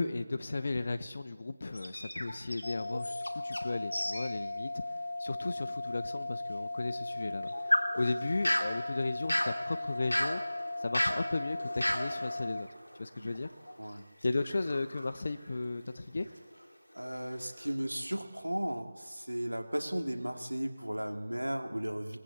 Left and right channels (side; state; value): both; inverted; correlation -0.98